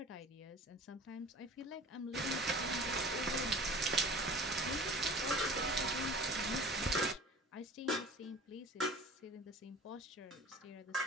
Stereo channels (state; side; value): normal; both; correlation 0.42